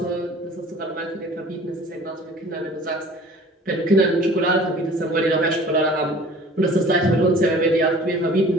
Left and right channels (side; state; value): both; normal; correlation 0.47